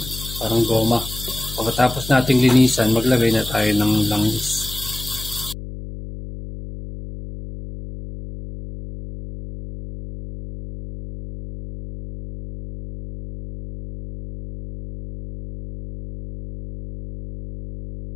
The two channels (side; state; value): left; noise; hum, 11 dB below the sound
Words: parang goma. Pagkatapos nating linisan, maglagay na tayo ng langis.